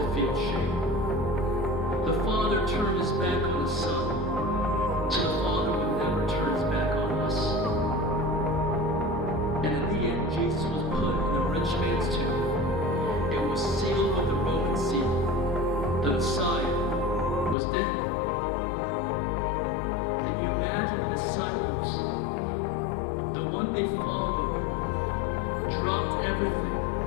feel shame. The Father turned his back on his Son so the Father would never turn his back on us. And in the end, Jesus was put in a rich man's tomb. It was sealed with the Roman seal. The Messiah was dead. Can you imagine the disciples, the one they followed, dropped everything,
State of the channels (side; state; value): right; drops out; at 17.6 s